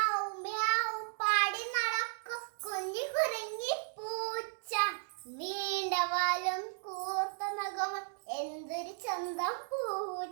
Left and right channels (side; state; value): left; silent; digital silence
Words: മ്യാവ് പാടി നടക്കും കുഞ്ഞി കുരങ്ങി പൂച്ച. നീണ്ട വാലും കൂർത്ത നഖവും എന്തൊരു ചന്തം